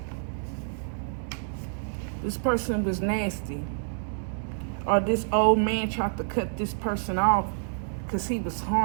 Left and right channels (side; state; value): left; silent; digital silence